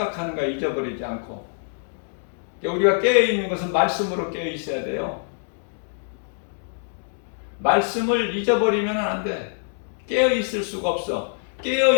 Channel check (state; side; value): silent; right; digital silence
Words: 거 잊어버리지 않고, 우리가 깨어있는 것은 말씀으로 깨어있어야 돼요. 말씀을 잊어버리면 안 돼. 깨어있을 수가 없어.